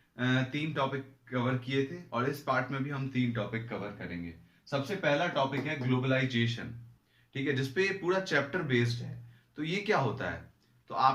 3 टॉपिक कवर किए थे और इस पार्ट में भी हम 3 टॉपिक कवर करेंगे। सबसे पहला टॉपिक है ग्लोबलाइजेशन, ठीक है, जिसपे पूरा चैप्टर बेस्ड है। तो ये क्या होता है? तो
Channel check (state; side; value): identical; both; correlation 1.00